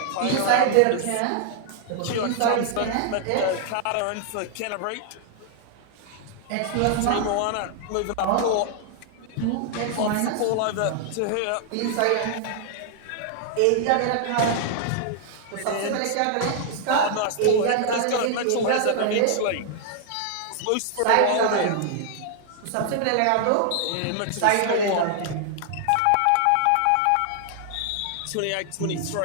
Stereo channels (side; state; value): both; different; correlation -0.01